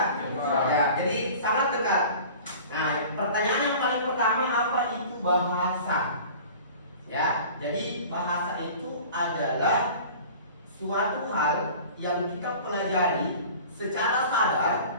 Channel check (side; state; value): both; inverted; correlation -0.42